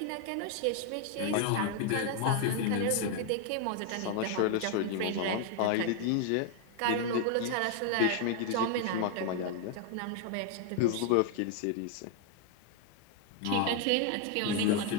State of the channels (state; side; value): different; both; correlation 0.00